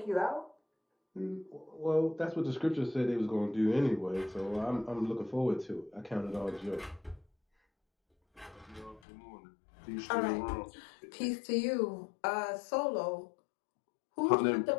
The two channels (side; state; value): right; drops out; at 9.0 s